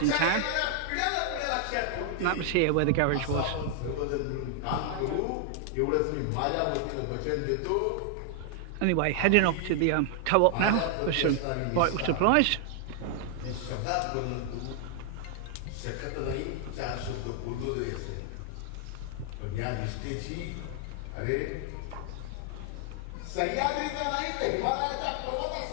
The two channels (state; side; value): different; both; correlation 0.00